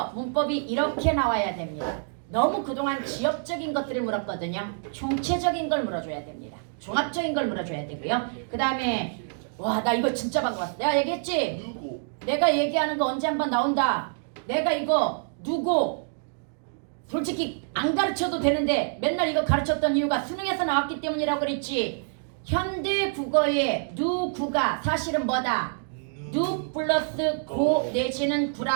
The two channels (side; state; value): left; silent; digital silence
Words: 문법이 이렇게 나와야 됩니다. 너무 그동안 지역적인 것들을 물었거든요. 총체적인 걸 물어줘야 됩니다. 종합적인 걸 물어줘야 되고요. 그 다음에 와, 나 이거 진짜 반가웠어. 내가 얘기했지? 누구? 내가 얘기하는 거 언제 한번 나온다. 내가 이거 누구 솔직히 안 가르쳐도 되는데 맨날 이거 가르쳤던 이유가 수능에서 나왔기 때문이라고 그랬지. 현대 국어의 누구가 사실은 뭐다? 누 플러스 고 내지는